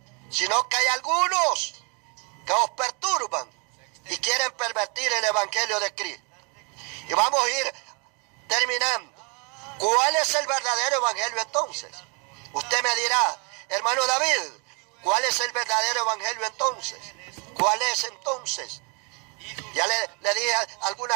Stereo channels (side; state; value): left; quieter; 33.9 dB